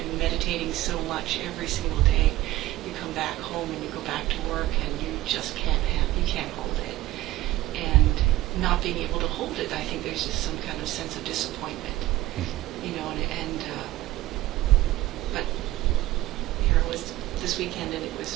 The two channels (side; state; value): left; quieter; 15.9 dB